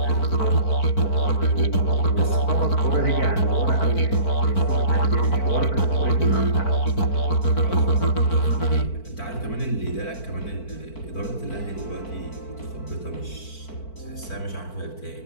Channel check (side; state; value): right; late; 4.5 ms